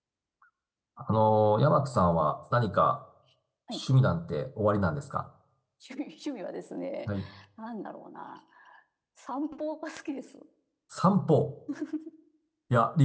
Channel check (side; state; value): both; identical; correlation 1.00